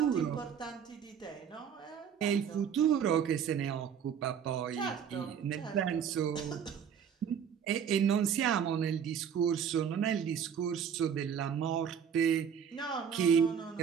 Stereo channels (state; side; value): quieter; left; 7.8 dB